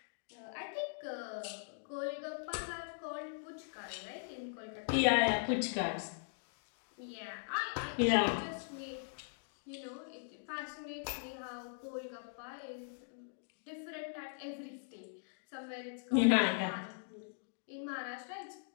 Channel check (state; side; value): silent; right; digital silence